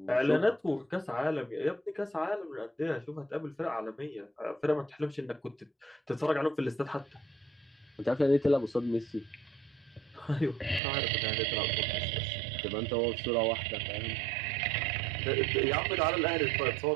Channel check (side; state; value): left; drops out; at 10.8 s